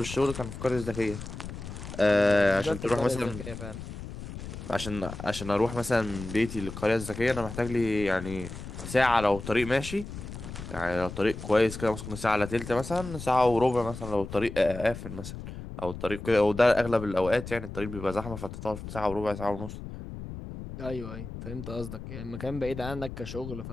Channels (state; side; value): noise; left; rumble, 10 dB below the sound